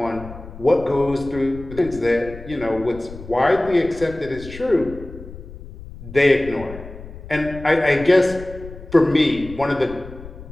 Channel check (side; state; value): left; noise; rumble, 15 dB below the sound